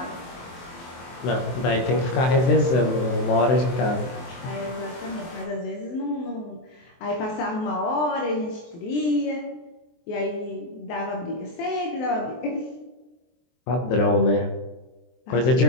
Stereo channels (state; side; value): late; right; 23 ms